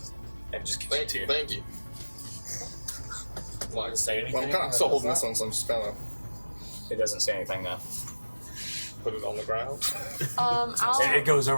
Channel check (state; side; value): inverted; both; correlation -1.00